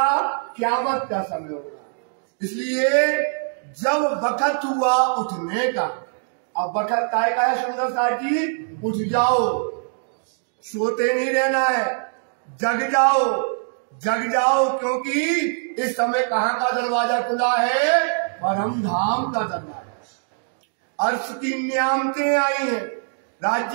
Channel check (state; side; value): silent; left; 64 dB below the other